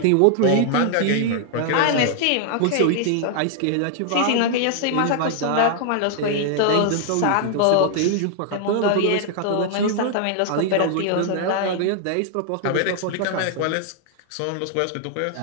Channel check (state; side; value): different; both; correlation 0.00